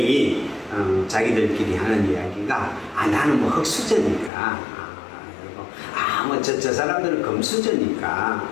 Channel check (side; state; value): right; drops out; at 4.3 s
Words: 자기들끼리 하는 이야기가 나는 뭐 흙수저니까 저 사람들은